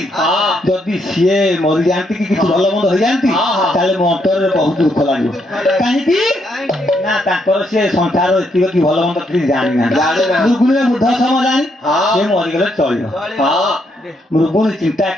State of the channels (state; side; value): normal; both; correlation 0.76